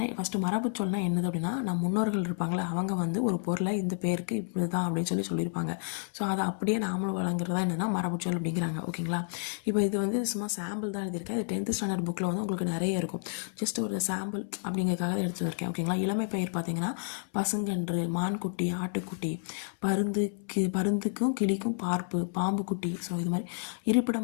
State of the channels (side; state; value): right; silent; 58 dB below the other